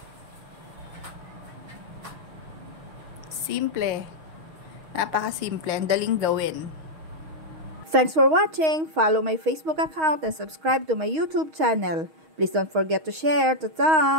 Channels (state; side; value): late; left; 6.3 ms